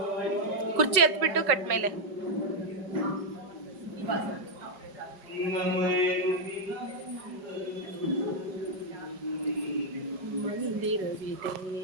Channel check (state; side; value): late; left; 5.3 ms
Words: ಕುರ್ಚಿ ಎತ್ಬಿಟ್ಟು ಕಟ್ ಮೇಲೆ ಮಂದಿರವಿದೆ.